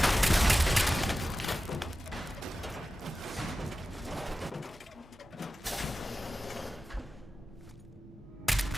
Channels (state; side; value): normal; both; correlation 0.94